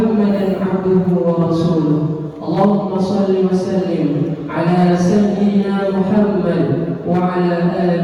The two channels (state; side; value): identical; both; correlation 1.00